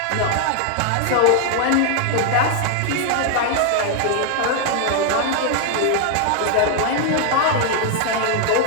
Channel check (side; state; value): both; different; correlation 0.00